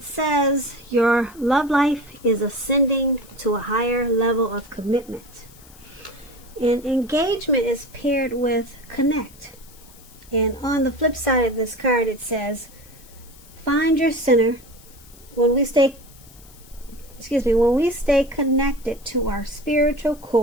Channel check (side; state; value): left; noise; hiss, 24 dB below the sound